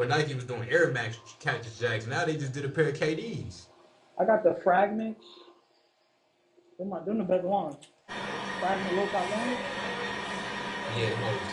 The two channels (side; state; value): both; identical; correlation 1.00